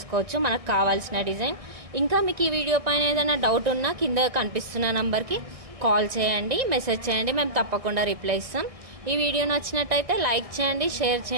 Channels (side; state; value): left; late; 1.6 ms